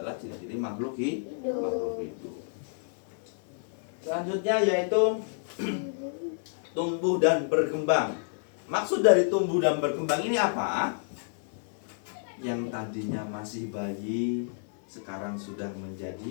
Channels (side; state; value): right; silent; 58 dB below the other